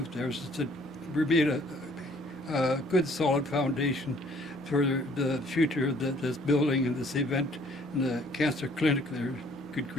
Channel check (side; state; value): both; normal; correlation 0.59